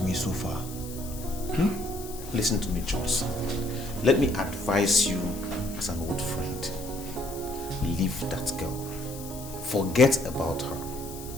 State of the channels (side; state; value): left; noise; hiss, 14 dB below the sound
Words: me so far. Listen to me, Johnson. Let me advise you as an old friend. Leave that girl. Forget about her.